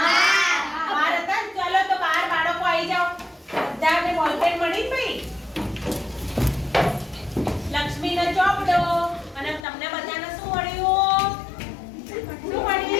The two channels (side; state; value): right; drops out; at 9.7 s